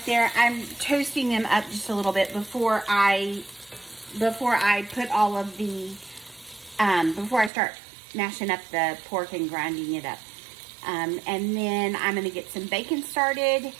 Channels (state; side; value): drops out; left; at 7.5 s